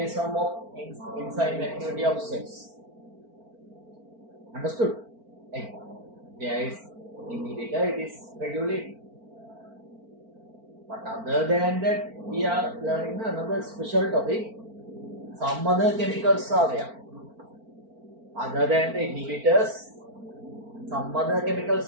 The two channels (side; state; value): left; late; 4.4 ms